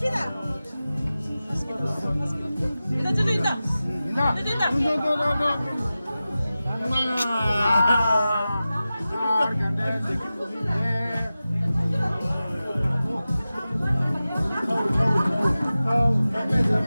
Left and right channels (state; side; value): inverted; both; correlation -0.95